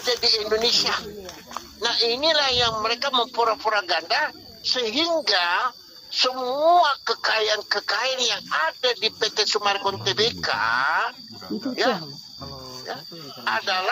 di Indonesia. Nah, inilah yang mereka mempura-pura ganda sehingga semua kekayaan-kekayaan yang ada di PT Sumarekon Tbk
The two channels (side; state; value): both; identical; correlation 1.00